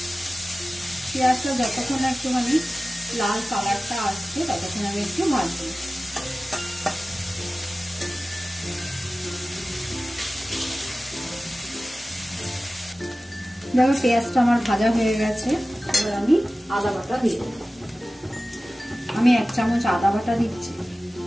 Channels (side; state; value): both; normal; correlation 0.96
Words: পেঁয়াজটা যতক্ষণ একটুখানি লাল কালারটা আসছে ততক্ষণ আমি একটু ভাজবো। দেখো পেঁয়াজটা আমার ভাজা হয়ে গেছে। এবার আমি আদা বাটা দিয়ে দেবো। আমি 1 চামচ আদা বাটা দিচ্ছি,